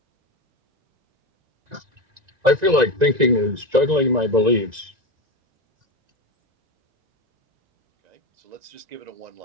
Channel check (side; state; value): left; late; 1.9 ms